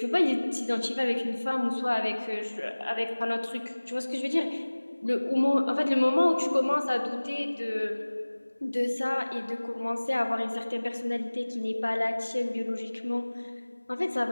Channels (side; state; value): both; inverted; correlation -1.00